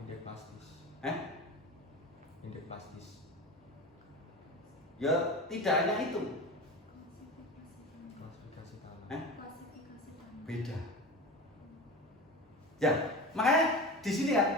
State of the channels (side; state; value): both; normal; correlation 0.29